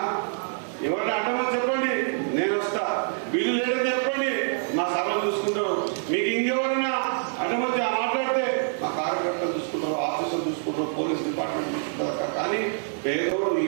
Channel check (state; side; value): silent; left; 61 dB below the other